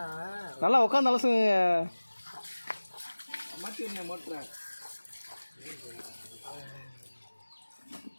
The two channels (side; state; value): both; inverted; correlation -1.00